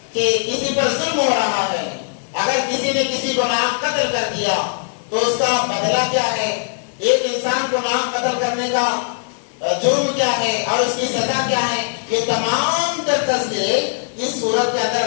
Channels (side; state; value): right; silent; digital silence